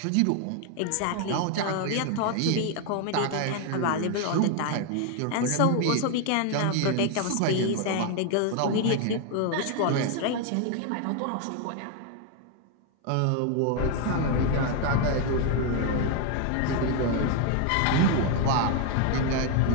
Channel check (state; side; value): different; both; correlation 0.01